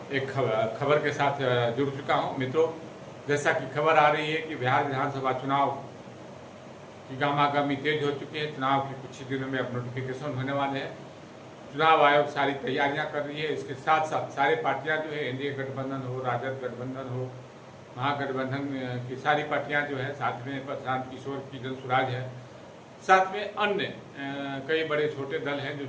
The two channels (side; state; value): both; identical; correlation 1.00